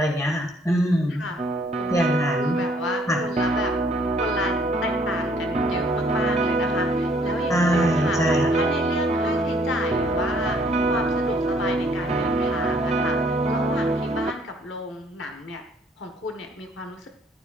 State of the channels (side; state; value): both; normal; correlation 0.63